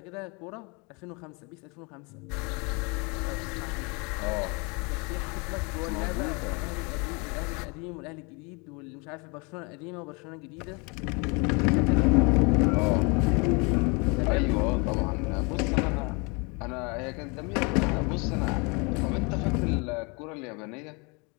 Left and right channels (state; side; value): quieter; right; 30.6 dB